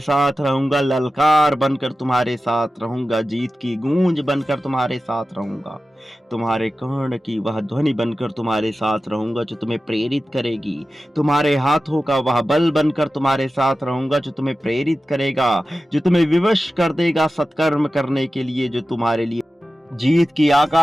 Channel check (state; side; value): normal; both; correlation 0.94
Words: रहूंगा। ललकार बनकर तुम्हारे साथ रहूंगा, जीत की गूंज बनकर तुम्हारे साथ रहूंगा, तुम्हारे कर्ण की वह ध्वनि बनकर तुम्हारे साथ रहूंगा जो तुम्हें प्रेरित करेगी। तुम्हारे हाथों का वह बल बनकर तुम्हारे साथ रहूंगा जो तुम्हें प्रेरित करेगा, जो तुम्हें विवश कर देगा सत्कर्म करने के लिए, जो तुम्हारे लिए जीत की